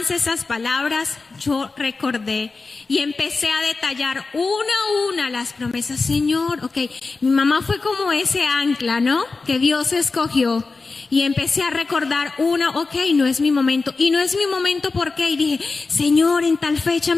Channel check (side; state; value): right; quieter; 4.0 dB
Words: esas palabras, yo recordé y empecé a detallar una a una las promesas. Señor, ok, mi mamá fue como ese ancla, ¿no? Que Dios escogió. Y empecé a recordar no es mi momento. Y no es mi momento, ¿por qué? Y dije, Señor, en tal fecha